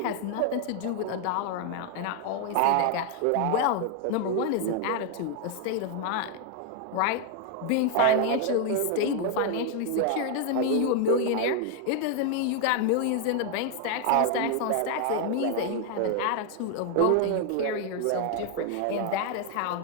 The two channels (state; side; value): different; both; correlation 0.01